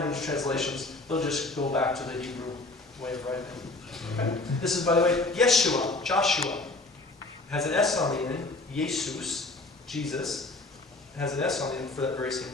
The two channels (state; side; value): quieter; right; 3.1 dB